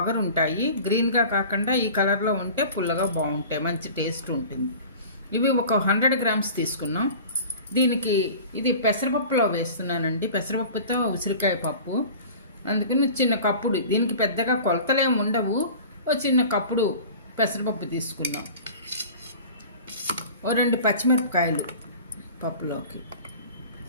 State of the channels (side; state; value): both; inverted; correlation -0.40